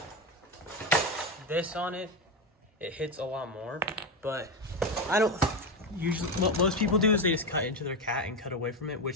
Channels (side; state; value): both; normal; correlation 0.14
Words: this on it, it hits a lot more. But I don't usually, what most people do is they just cut into their cat and cut away from it,